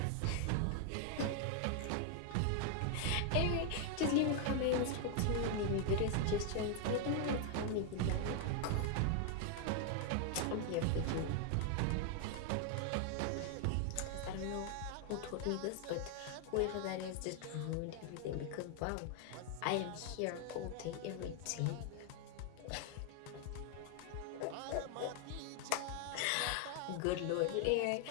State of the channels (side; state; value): both; different; correlation 0.00